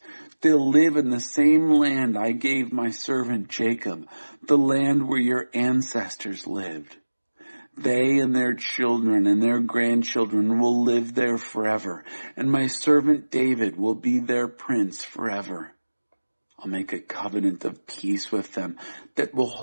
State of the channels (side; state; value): both; inverted; correlation -1.00